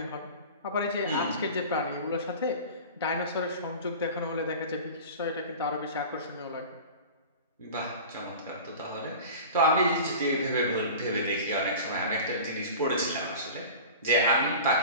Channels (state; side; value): inverted; both; correlation -0.36